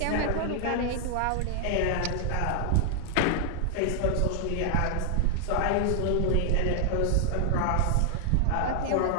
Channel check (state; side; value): different; both; correlation 0.00